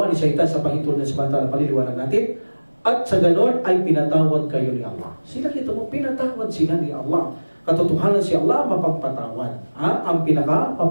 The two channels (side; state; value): both; inverted; correlation -1.00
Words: ni Shaitan sa pahintulot ng samantala, paliliwanag natin. At sa ganon ay pinatawad kayo ni Allah. Sila kita mo, pinatawad sila ni Allah. Katotohanan si Allah mapagpatawad. Ang